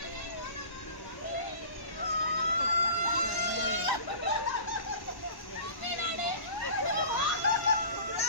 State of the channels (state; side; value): late; right; 1.1 ms